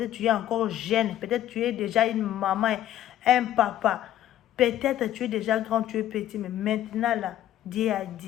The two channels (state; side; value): quieter; right; 12.4 dB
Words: tu es encore jeune, peut-être tu es déjà une maman, un papa, peut-être tu es déjà grand, tu es petit, mais maintenant là, Dieu a